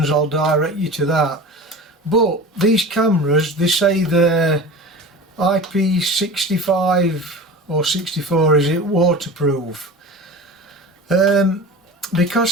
I'll direct you to that. But these cameras, they say they're IP65 or 64, is it, waterproof.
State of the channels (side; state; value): both; normal; correlation 0.34